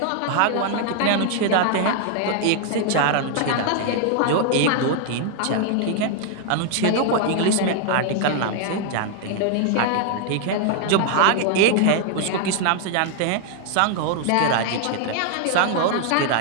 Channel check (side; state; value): both; different; correlation 0.00